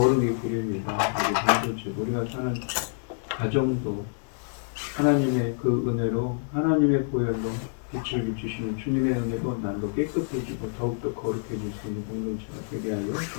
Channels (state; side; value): silent; right; digital silence